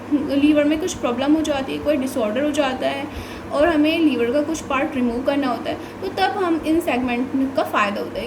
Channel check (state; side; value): identical; both; correlation 1.00